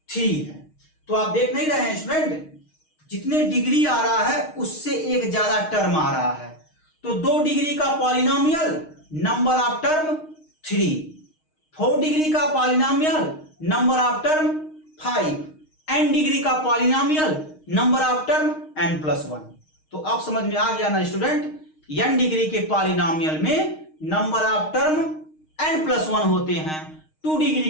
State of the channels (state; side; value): late; right; 6.4 ms